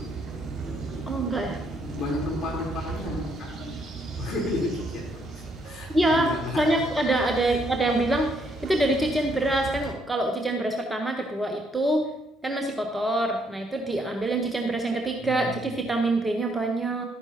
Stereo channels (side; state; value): both; normal; correlation 0.71